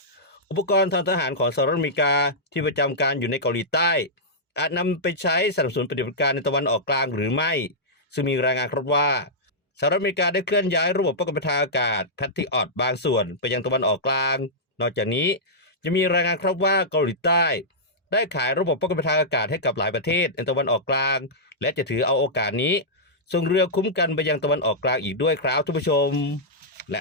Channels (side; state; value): both; normal; correlation -0.11